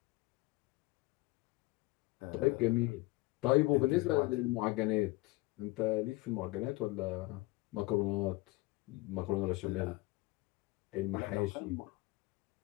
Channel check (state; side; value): quieter; right; 21.1 dB